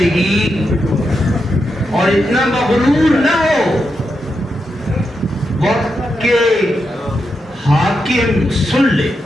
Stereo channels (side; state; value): both; normal; correlation 0.85